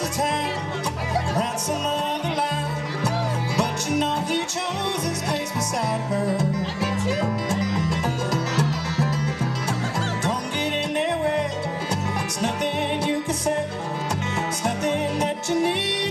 time, write some other line, but you know he chose his place beside her. Don't get in their way. It's nothing you can say. It's nothing that you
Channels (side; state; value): both; identical; correlation 1.00